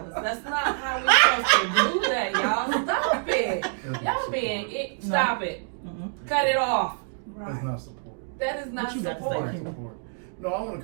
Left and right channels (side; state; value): left; silent; digital silence